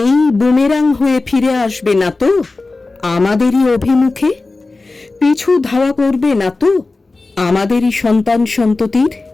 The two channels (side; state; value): right; quieter; 3.5 dB